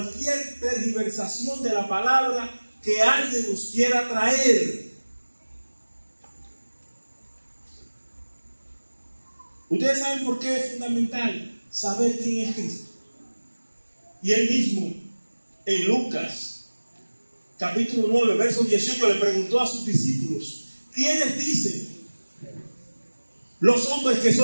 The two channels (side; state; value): both; inverted; correlation -1.00